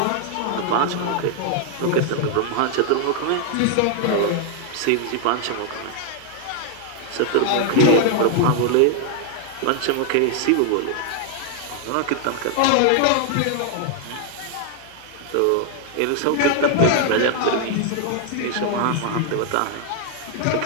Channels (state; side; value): different; both; correlation 0.00